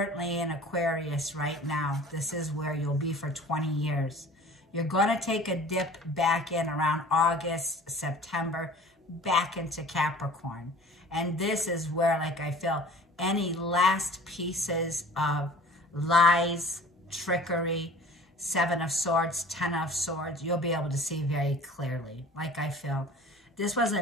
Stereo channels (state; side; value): normal; both; correlation 0.45